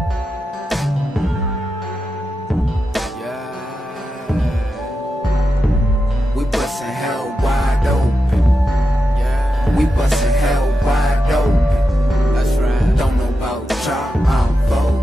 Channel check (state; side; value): normal; both; correlation 0.89